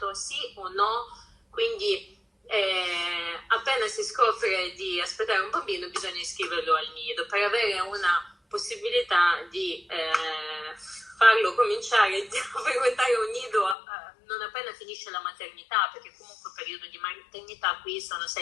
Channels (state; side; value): drops out; right; at 13.8 s